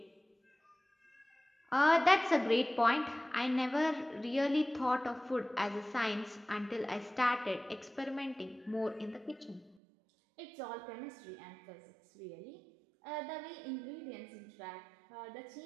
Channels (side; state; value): left; drops out; at 9.8 s